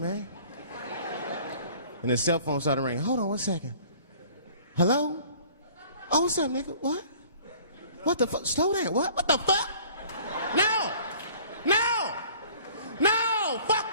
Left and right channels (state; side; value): inverted; both; correlation -0.50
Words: And his cell phone started ringing. Hold on 1 second. Hello? Oh, what's up, nigga? What? What the fuck? Slow down. What? What the fuck? No!